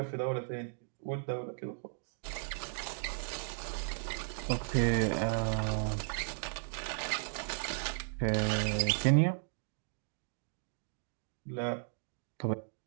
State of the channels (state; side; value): silent; left; digital silence